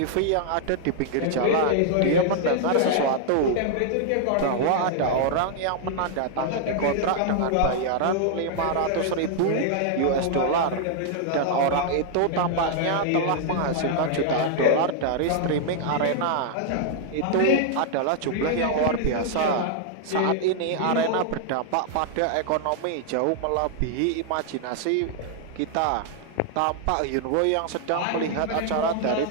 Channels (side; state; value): both; different; correlation -0.01